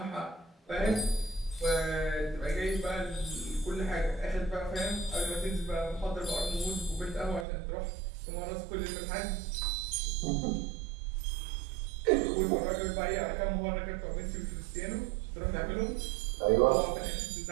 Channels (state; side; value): drops out; left; at 7.5 s